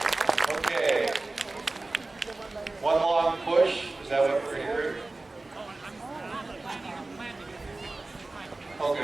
Okay. One long push. Is that what we're hearing? Oh,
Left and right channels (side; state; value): left; quieter; 3.2 dB